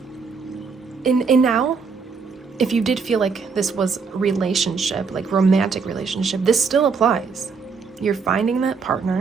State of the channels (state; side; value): quieter; left; 5.2 dB